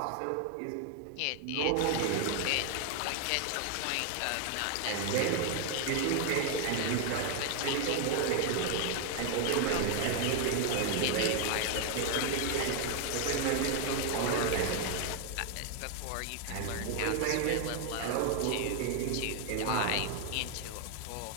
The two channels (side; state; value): both; different; correlation 0.01